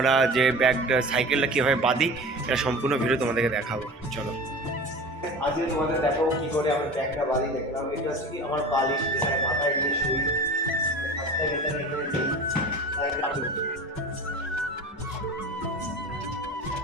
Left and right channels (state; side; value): normal; both; correlation 0.35